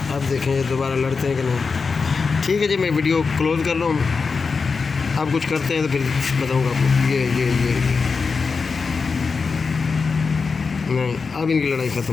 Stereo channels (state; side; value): quieter; right; 4.9 dB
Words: अब देखें ये दोबारा लड़ते हैं कि नहीं। ठीक है जी, मैं वीडियो क्लोज कर रहा हूँ। आप कुछ करते हैं तो फिर बताऊँगा आपको। ये नहीं, अब इनकी लड़ाई